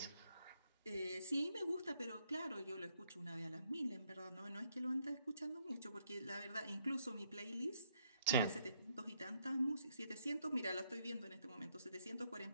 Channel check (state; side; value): inverted; both; correlation -0.74